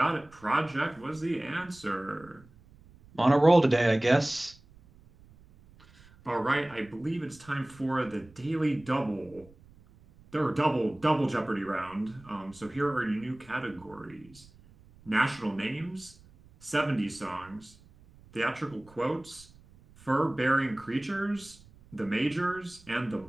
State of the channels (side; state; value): right; noise; rumble, 25 dB below the sound